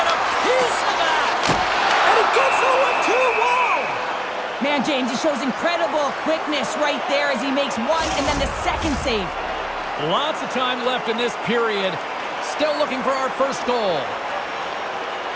a piece of that? And it gets the 1-2. Wow! Man, James, he shows incredible quickness right there as he makes one and then the second save. Lots of time left in this period. Still looking for our first goal.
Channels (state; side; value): identical; both; correlation 1.00